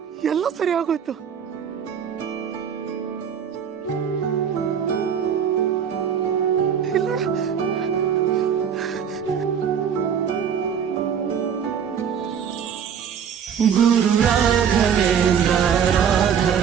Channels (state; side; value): quieter; left; 7.8 dB